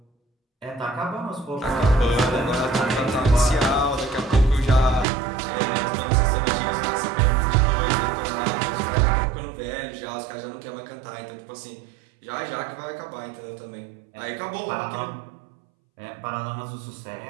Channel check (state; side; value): drops out; left; at 5.1 s